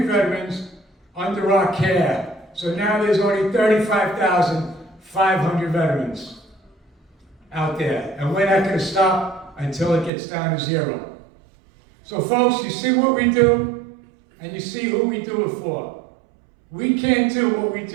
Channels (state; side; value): drops out; left; at 10.1 s